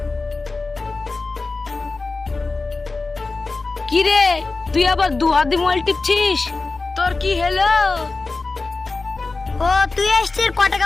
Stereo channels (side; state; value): right; quieter; 3.7 dB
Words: কি রে তুই আবার দু হাত দিয়ে মোবাইল টিপছিস? তোর কি হলো? ও তুই আসছিস, ক